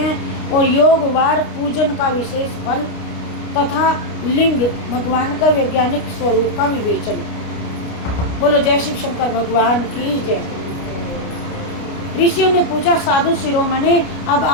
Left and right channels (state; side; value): late; right; 29 ms